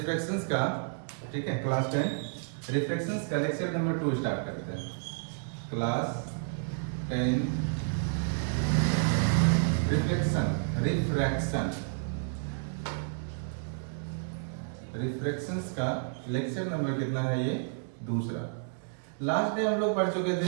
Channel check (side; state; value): left; silent; digital silence